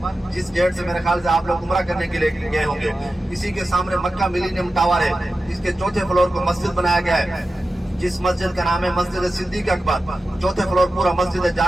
جس گیٹ سے میرے خیال سے آپ لوگ عمرہ کرنے کے لیے گئے ہوں گے، اسی کے سامنے مکہ ملینیم ٹاور ہے، اس کے چوتھے فلور کو مسجد بنایا گیا ہے، جس مسجد کا نام ہے مسجد صدیق اکبر۔ چوتھے فلور پورا مسجد ہے، جا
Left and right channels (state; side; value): normal; both; correlation 0.93